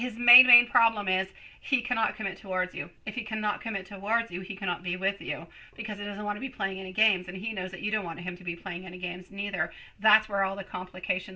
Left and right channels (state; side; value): identical; both; correlation 1.00